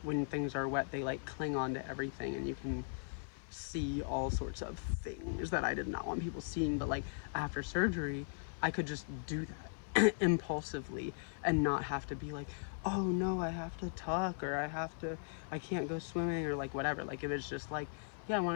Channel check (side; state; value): right; silent; 52 dB below the other